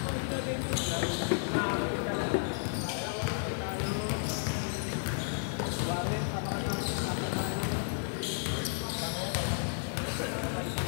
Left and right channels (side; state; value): right; silent; digital silence